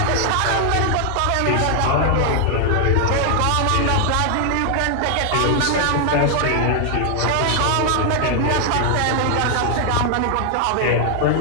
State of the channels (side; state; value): both; different; correlation 0.00